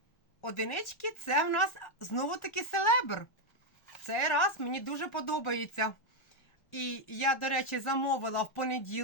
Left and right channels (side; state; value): right; late; 1.4 ms